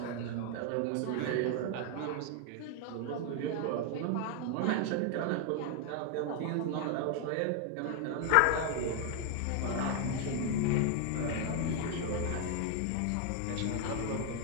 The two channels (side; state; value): both; different; correlation 0.00